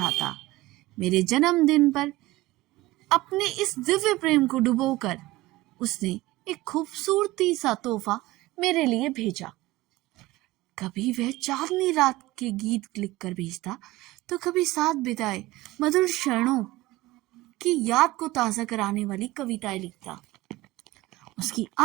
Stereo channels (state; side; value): quieter; left; 18.6 dB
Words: मेरे जन्मदिन पर अपने इस दिव्य प्रेम को डुबोकर उसने एक खूबसूरती सा तोहफा मेरे लिए भेजा। कभी वह चांदनी रात के गीत लिखकर भेजता तो कभी साथ बिताए मधुर क्षणों की याद को ताज़ा कराने वाली कविताएं लिखता। उसकी